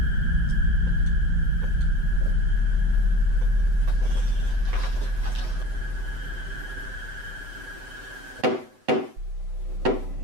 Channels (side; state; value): left; late; 7.9 ms